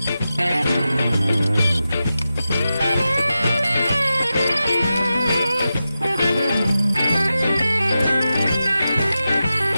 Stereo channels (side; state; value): both; inverted; correlation -0.92